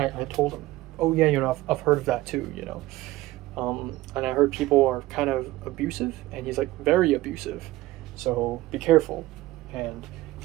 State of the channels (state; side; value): quieter; left; 17.8 dB